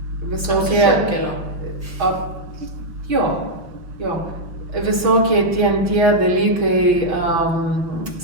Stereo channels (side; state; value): left; late; 5.8 ms